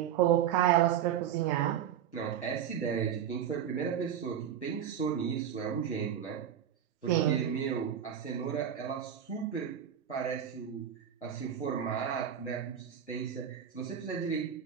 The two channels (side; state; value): left; quieter; 9.2 dB